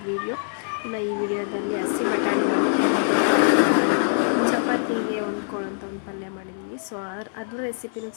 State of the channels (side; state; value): right; silent; digital silence